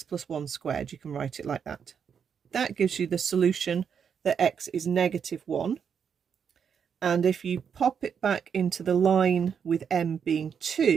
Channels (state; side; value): quieter; left; 7.2 dB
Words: plus 1 squared. You can write it like that. That gives you the solution that x is negative 1. And if you pop it back into the line with m being